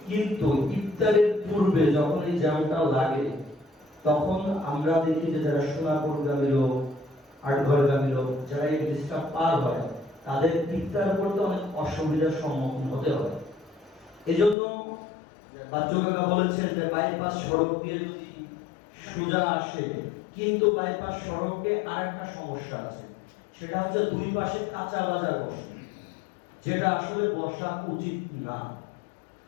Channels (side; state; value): right; drops out; at 14.6 s